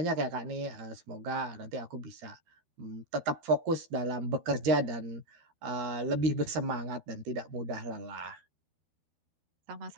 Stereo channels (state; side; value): late; left; 13 ms